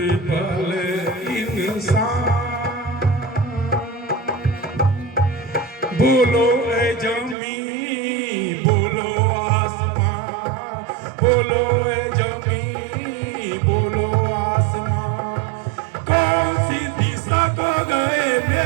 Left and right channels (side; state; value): left; drops out; at 7.4 s